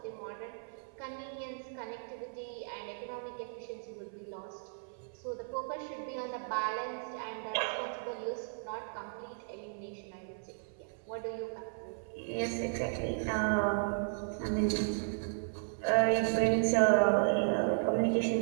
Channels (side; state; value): left; silent; 54 dB below the other